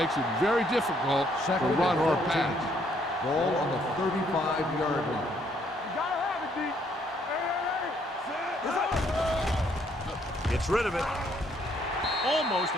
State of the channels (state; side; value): normal; both; correlation 0.68